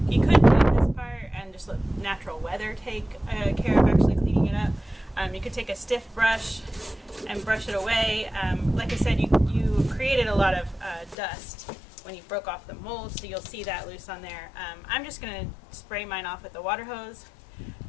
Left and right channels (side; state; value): right; drops out; at 11.2 s